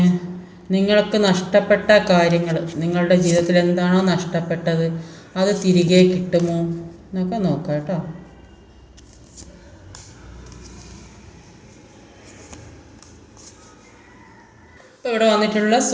നിങ്ങൾക്ക് നഷ്ടപ്പെട്ട കാര്യങ്ങൾ, നിങ്ങളുടെ ജീവിതത്തിൽ എന്താണോ നഷ്ടപ്പെട്ടത് അത് തിരികെ കിട്ടുമോ എന്നൊക്കെ നോക്കാം കേട്ടോ. ഇപ്പോൾ ഇവിടെ വന്നിട്ടുള്ള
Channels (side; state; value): both; identical; correlation 1.00